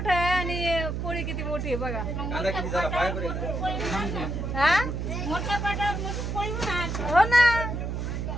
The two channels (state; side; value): noise; right; hum, 3 dB below the sound